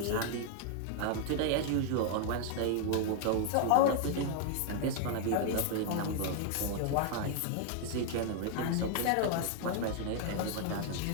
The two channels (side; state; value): both; different; correlation 0.00